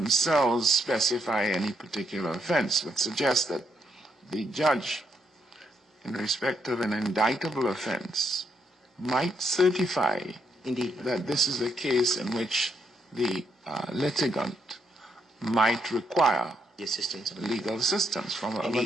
specify any particular offense, but suggest that the judge, in respect of an indictable offense, might certify Indeed. that this is a case in which the litigant might require The assistance of legal assistance from an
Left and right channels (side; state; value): both; normal; correlation 0.77